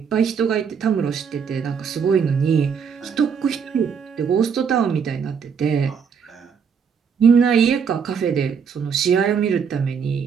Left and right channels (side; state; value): left; quieter; 6.6 dB